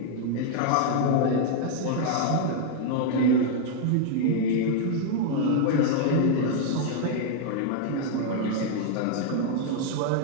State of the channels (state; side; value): different; both; correlation 0.00